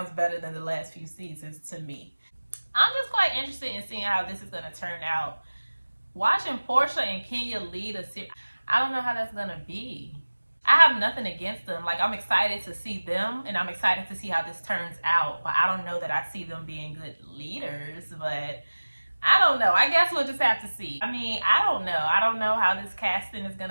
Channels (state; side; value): inverted; both; correlation -1.00